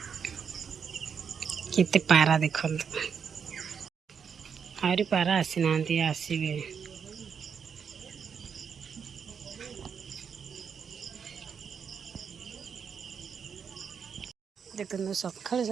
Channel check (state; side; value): quieter; left; 6.8 dB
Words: केते पारा देखु आहरी पारा आसी ना आसबे देखो सकाल